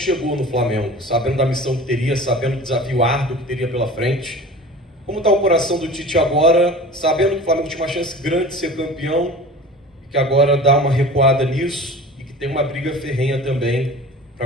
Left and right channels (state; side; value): normal; both; correlation 0.39